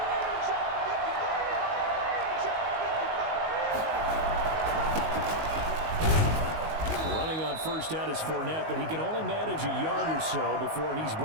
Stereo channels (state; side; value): late; left; 19 ms